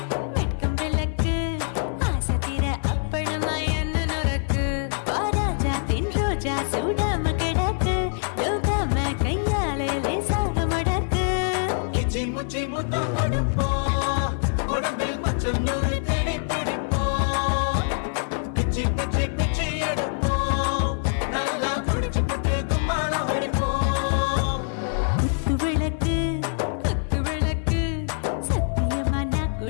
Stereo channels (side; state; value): right; silent; 62 dB below the other